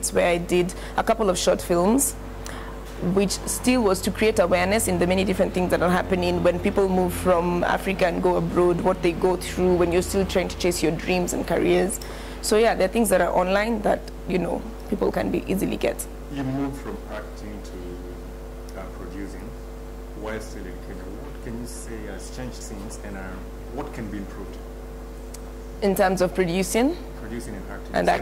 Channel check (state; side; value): identical; both; correlation 1.00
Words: where I did a couple of short films, which still was to create awareness in the many different things that are happening when people move from Africa and go abroad, what they go through when you're still trying to chase your dreams and careers. So yeah, there are things that are online that, people can be easily get. You moved from acting to producing while still in Kenya. What can you say has changed since, and what can be improved? In terms of producing? Producing and acting. And